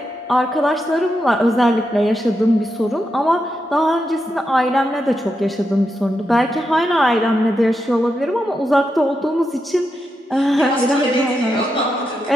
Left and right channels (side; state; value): both; normal; correlation 0.85